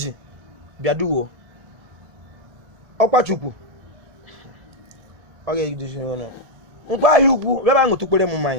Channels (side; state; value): left; late; 1.7 ms